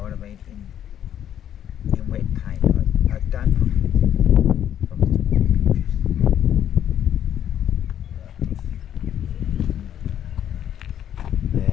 what I mean? In wet paint. I don't put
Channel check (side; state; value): right; quieter; 10.2 dB